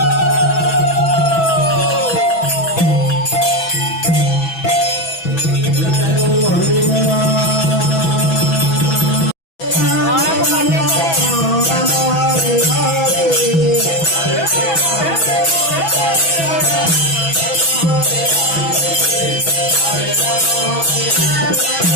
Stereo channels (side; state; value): right; late; 6.1 ms